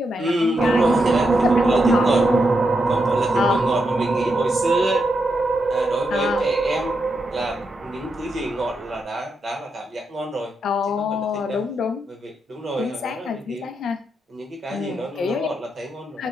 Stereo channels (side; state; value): both; normal; correlation 0.83